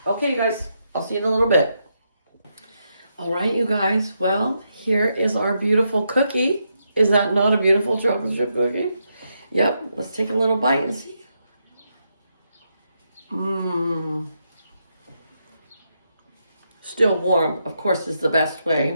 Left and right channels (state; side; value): inverted; both; correlation -0.82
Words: Okay, you guys, I'll see you in a little bit. All right, you guys, well, here is our beautiful cookie. Is that not a beautiful chocolate chip cookie? Yep, let's take a little bite and see. Mmm. Still warm, of course, is the best